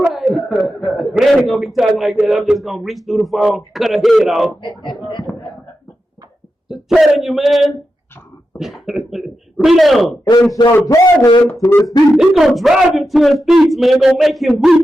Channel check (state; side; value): normal; both; correlation 0.89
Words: right. But I ain't gonna be talking like that. I'm just gonna reach through the phone, cut her head off. Just telling you, man. Read on. And shall drive him to his feet. He's gonna drive him to his feet, man. Gonna make him